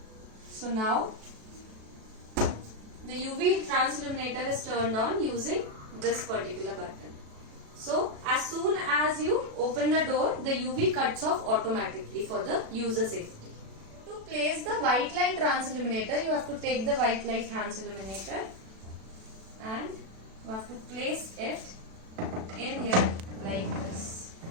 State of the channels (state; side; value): late; left; 36 ms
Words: So now the UV trans illuminator is turned on using this particular button. So as soon as you open the door, the UV cuts off automatically for the user safety. To place the white light trans illuminator, you have to take the white light trans illuminator and you have to place it in here like this.